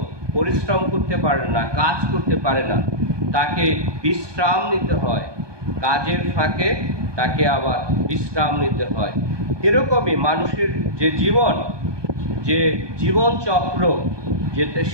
পরিশ্রম করতে পারে না, কাজ করতে পারে না, তাকে বিশ্রাম নিতে হয়, কাজের ফাঁকে তাকে আবার বিশ্রাম নিতে হয়। এরকমই মানুষের যে জীবন চক্র, যেতে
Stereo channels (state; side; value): late; left; 1.2 ms